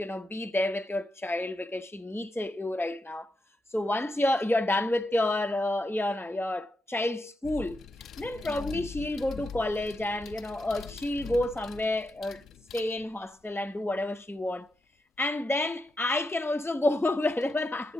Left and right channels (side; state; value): both; normal; correlation 0.85